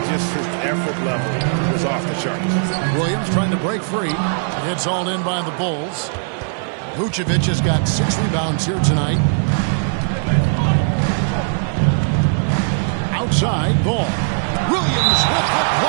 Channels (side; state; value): left; silent; digital silence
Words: just his effort level was off the charts. Williams trying to break free. It's all in by the Bulls. Vucevic has got 6 rebounds here tonight. Outside, Ball. Williams with the